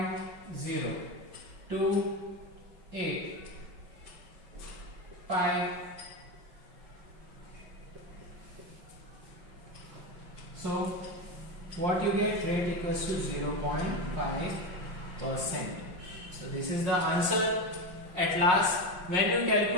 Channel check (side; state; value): left; late; 5.5 ms